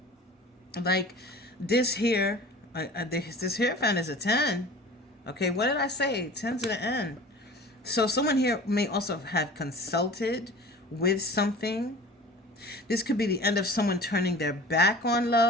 Like this here, this Hierophant is a 10. Okay, what did I say? 10 to the end. So someone here may also have consulted with something. This could be the end of someone turning their back on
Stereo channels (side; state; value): both; normal; correlation 0.41